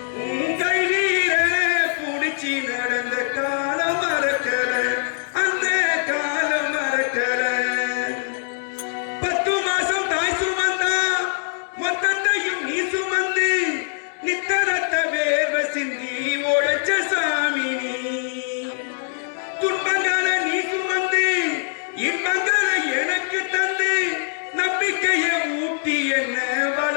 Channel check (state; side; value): silent; right; digital silence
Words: உன் கையில புடிச்சு நடந்த காலம் மறக்கல அந்த காலம் மறக்கல 10 மாசம் தாய் சுமந்தா மொத்தத்தையும் நீ சுமந்து நித்தரத்த வேர்வை சிந்தி உழைச்ச சாமி நீ துன்பங்களை நீ சுமந்து இன்பங்களை எனக்கு தந்து நம்பிக்கையை ஊட்டி என்ன